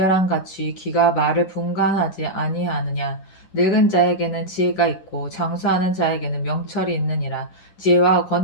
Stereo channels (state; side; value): late; right; 10 ms